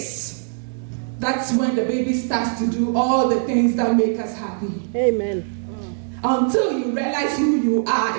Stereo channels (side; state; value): left; silent; digital silence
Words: that's when the baby starts to do all the things that make us happy. Amen. Until you realize who you